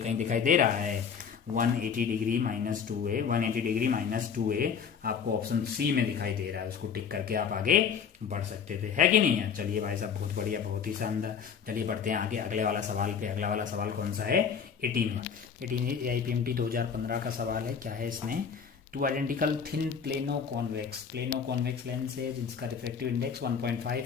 दिखाई दे रहा है, 180 degree minus 2a, 180 degree minus 2a आपको ऑप्शन सी में दिखाई दे रहा है, उसको टिक करके आप आगे बढ़ सकते थे, है कि नहीं है। चलिए भाई साहब बहुत बढ़िया, बहुत ही शानदार। चलिए बढ़ते हैं आगे अगले वाला सवाल पे। अगला वाला सवाल कौन सा है, 18 AIPMT 2015 का सवाल है। क्या है इसमें, two identical thin plano convex lens है जिसका रिफ्रैक्टिव इंडेक्स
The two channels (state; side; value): quieter; right; 6.8 dB